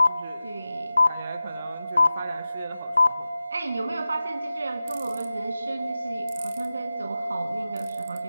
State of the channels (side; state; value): both; inverted; correlation -0.94